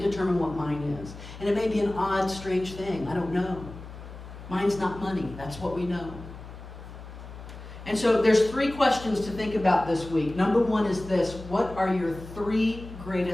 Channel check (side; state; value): left; noise; hum, 14 dB below the sound